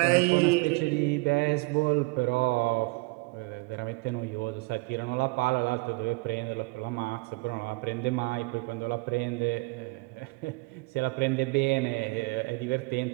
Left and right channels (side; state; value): left; quieter; 26.6 dB